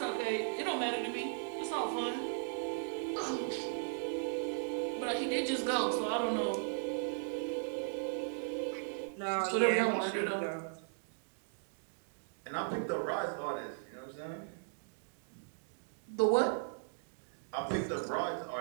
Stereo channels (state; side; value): silent; left; digital silence